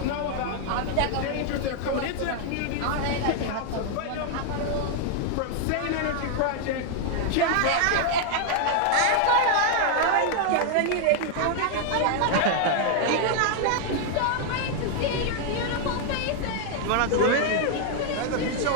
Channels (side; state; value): both; different; correlation 0.00